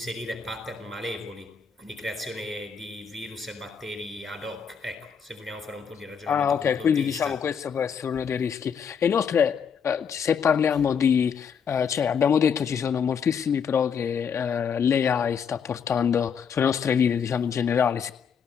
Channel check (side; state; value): right; quieter; 6.9 dB